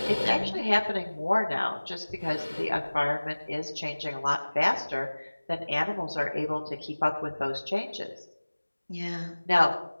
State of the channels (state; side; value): inverted; both; correlation -1.00